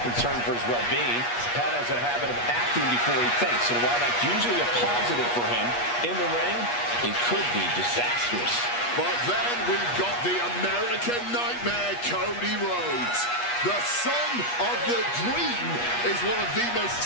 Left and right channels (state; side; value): late; right; 8.4 ms